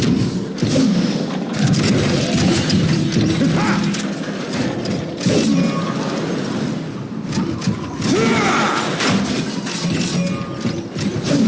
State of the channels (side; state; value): both; identical; correlation 1.00